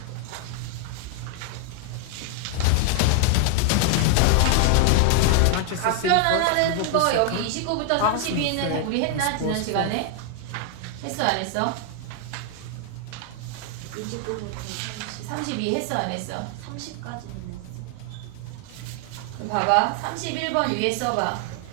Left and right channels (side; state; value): both; different; correlation 0.00